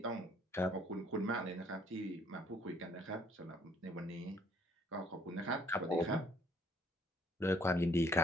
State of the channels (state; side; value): normal; both; correlation 0.63